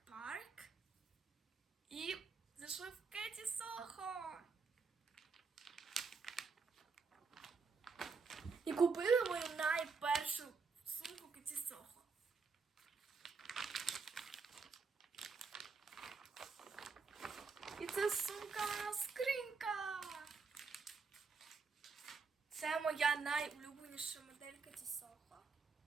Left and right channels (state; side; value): quieter; left; 4.8 dB